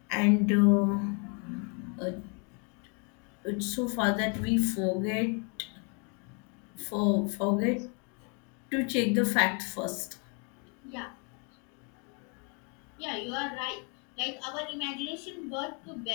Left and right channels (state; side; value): quieter; right; 36.9 dB